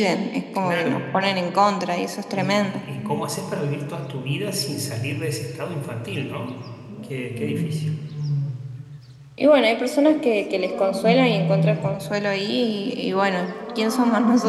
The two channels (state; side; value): identical; both; correlation 1.00